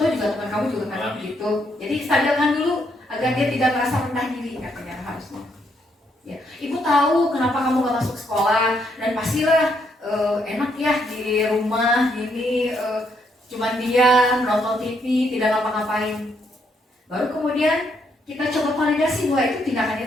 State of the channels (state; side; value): normal; both; correlation 0.74